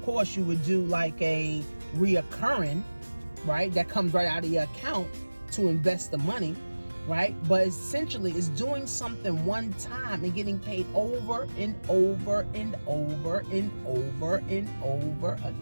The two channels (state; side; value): inverted; both; correlation -1.00